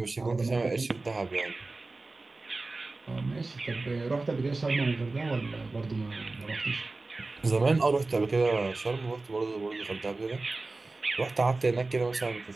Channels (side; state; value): left; quieter; 3.4 dB